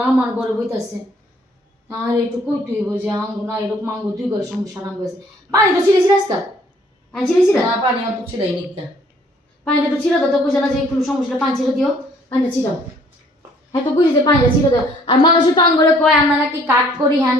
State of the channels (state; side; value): normal; both; correlation 0.60